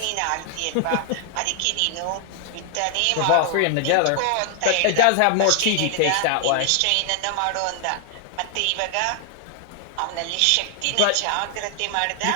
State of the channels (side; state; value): both; different; correlation 0.00